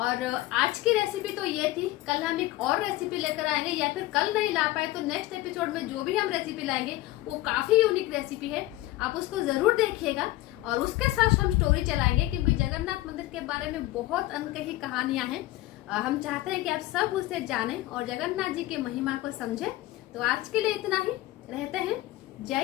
आज की रेसिपी तो ये थी। कल हम एक और रेसिपी लेकर आएंगे, या फिर कल नहीं ला पाए तो नेक्स्ट एपिसोड में जो भी हम रेसिपी लाएंगे वो काफी यूनिक रेसिपी है, आप उसको जरूर देखिएगा। और उसके साथ हम स्टोरी चलाएंगे, क्योंकि जगन्नाथ मंदिर के बारे में बहुत अनकही कहानियां हैं। हम चाहते हैं कि आप सब उसे जानें और जगन्नाथ जी की महिमा को समझें। तो आज के लिए इतना ही, रहते हैं।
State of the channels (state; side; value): quieter; right; 17.0 dB